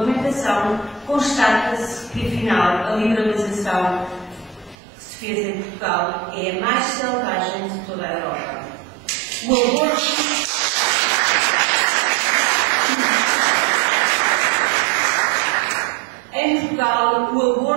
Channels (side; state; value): left; drops out; at 4.8 s